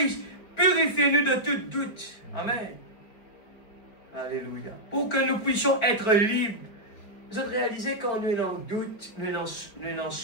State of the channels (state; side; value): late; right; 4.6 ms